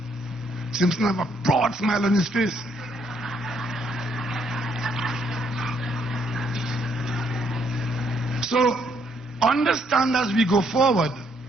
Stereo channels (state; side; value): normal; both; correlation 0.71